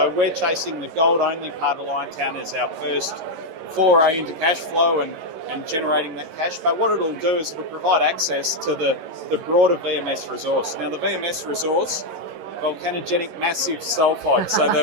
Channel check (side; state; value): left; late; 11 ms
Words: we're chasing the gold-only part of Liontown as our first foray into cash flow and generating that cash. But what it'll do is it'll provide access to the broader VMS resource. Now, the VMS resource, volcanogenic massive sulfide. So